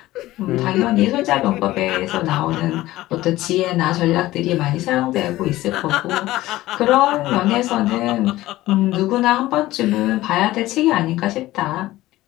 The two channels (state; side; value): quieter; right; 16.7 dB